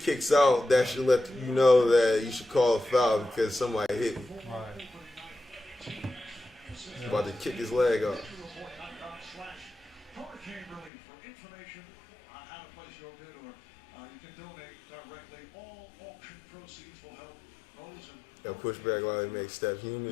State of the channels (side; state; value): right; drops out; at 10.9 s